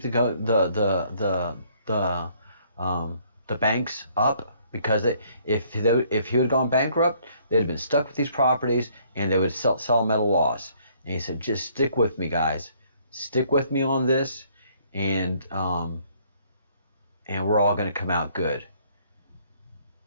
the banks up, because if he had gone bankrupt, they'd have been stuck with these properties and they would sell them at a loss. And he said, just stick with me, guys, stick with me on this, and we're all going to come out good.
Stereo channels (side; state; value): both; inverted; correlation -0.64